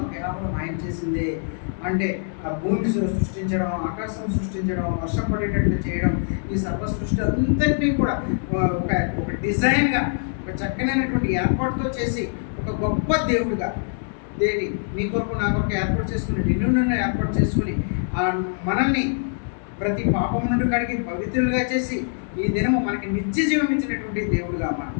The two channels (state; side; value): silent; right; digital silence